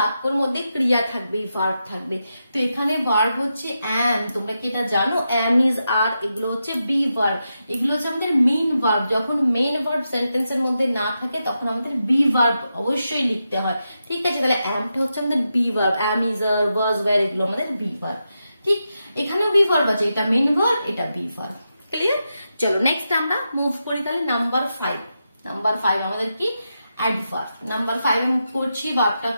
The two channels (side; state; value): both; inverted; correlation -0.87